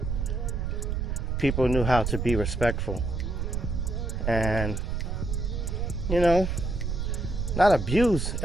people knew how to be respectful and, you know, not abuse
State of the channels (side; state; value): right; noise; rumble, 1 dB below the sound